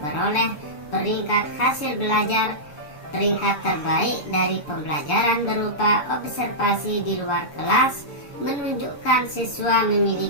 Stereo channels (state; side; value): late; right; 6.9 ms